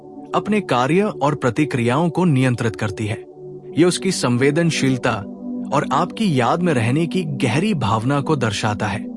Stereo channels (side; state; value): both; identical; correlation 1.00